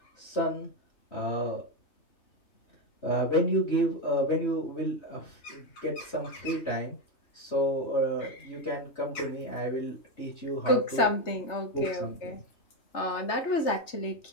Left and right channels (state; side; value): late; right; 3.3 ms